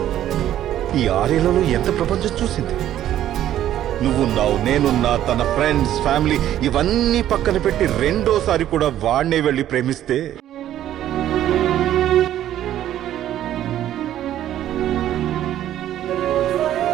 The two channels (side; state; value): left; quieter; 12.0 dB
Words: ఈ 6 ఏళ్లలో ఎంత ప్రపంచం చూసింది. నువ్వున్నావు, నేనున్నా, తన ఫ్రెండ్స్, ఫ్యామిలీ ఇవన్నీ పక్కన పెట్టి రెండోసారి కూడా వాడినే వెళ్ళి ప్రేమిస్తే